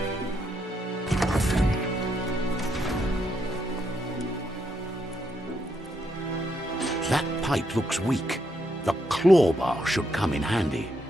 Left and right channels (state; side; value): normal; both; correlation 0.78